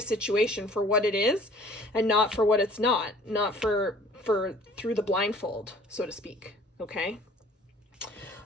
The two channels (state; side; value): normal; both; correlation 0.52